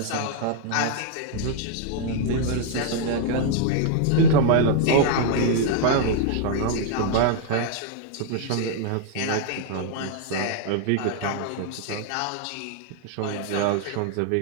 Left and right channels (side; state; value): both; different; correlation 0.00